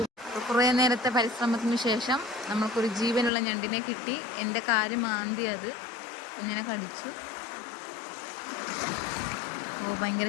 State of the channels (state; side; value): drops out; right; at 3.3 s